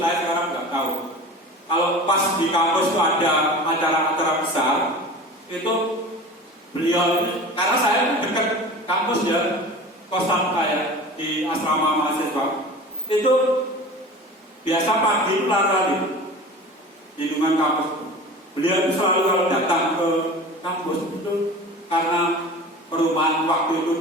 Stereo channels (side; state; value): both; normal; correlation 0.37